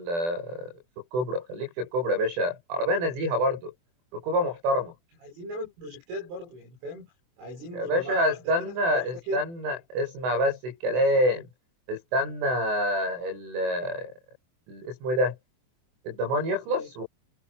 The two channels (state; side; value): late; left; 24 ms